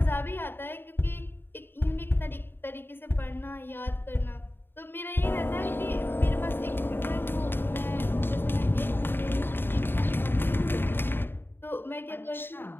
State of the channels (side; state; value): right; late; 0.10 ms